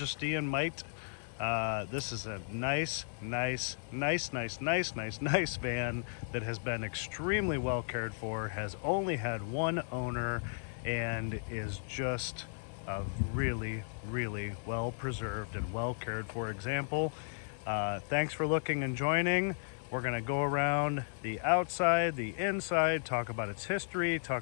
and might. This is a nice van that has been extremely well cared for, has only had one owner, and is just a really well preserved and well cared for example. Thanks for looking and joining. We're going to go around the outside, the inside, talk about its history,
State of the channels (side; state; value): right; silent; digital silence